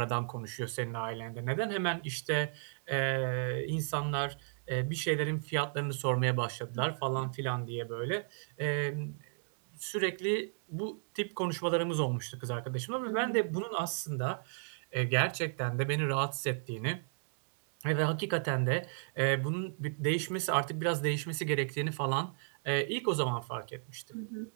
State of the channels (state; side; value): silent; left; digital silence